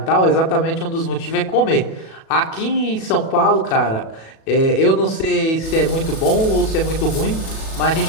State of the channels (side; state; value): right; late; 37 ms